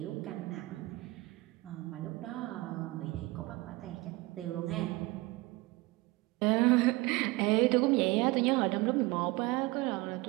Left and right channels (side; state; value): left; quieter; 21.8 dB